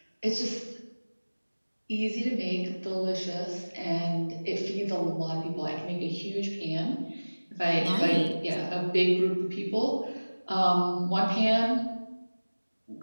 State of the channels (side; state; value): both; inverted; correlation -1.00